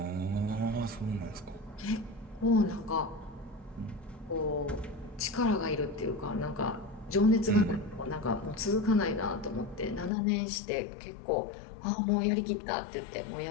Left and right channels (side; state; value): right; drops out; at 10.1 s